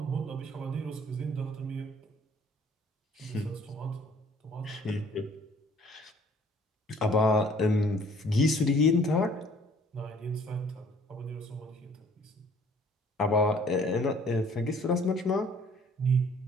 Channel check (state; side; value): normal; both; correlation 0.56